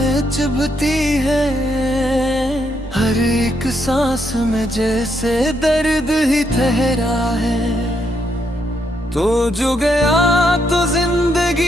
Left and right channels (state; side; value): normal; both; correlation 0.77